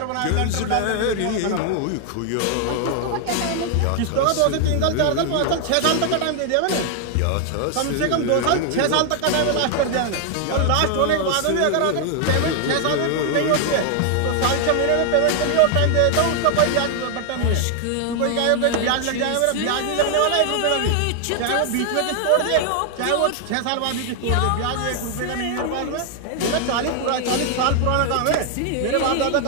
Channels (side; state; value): both; different; correlation 0.00